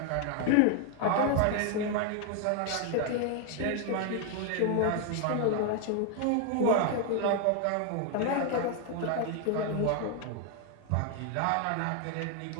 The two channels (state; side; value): different; both; correlation 0.00